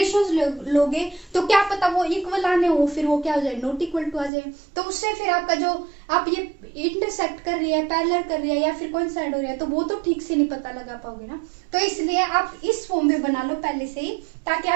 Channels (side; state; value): left; drops out; at 4.3 s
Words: लोगे तो क्या पता वो इक्वल आने हो, फिर वो क्या हो जाए नॉट इक्वल टू आ जाए। तो उससे फिर आपका जो आप ये इंटरसेक्ट कर रही है, पैरेलल कर रही है या फिर कोइंसाइड हो रहा है, तो वो तो ठीक से नहीं पता लगा पाओगे ना। तो इसलिए आप इस फॉर्म में बना लो पहले से ही, ताकि